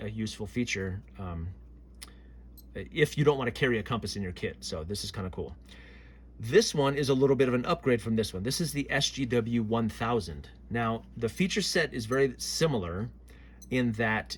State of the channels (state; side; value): identical; both; correlation 1.00